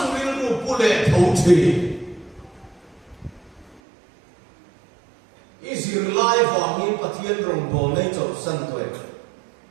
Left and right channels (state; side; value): drops out; left; at 3.8 s